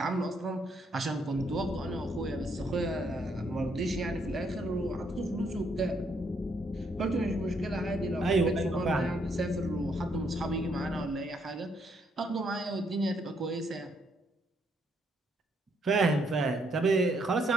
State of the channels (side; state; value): both; normal; correlation 0.72